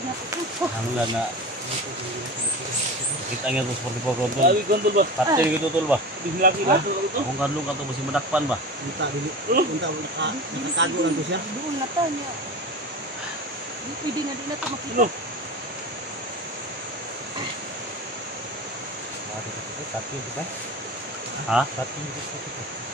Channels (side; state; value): both; normal; correlation 0.31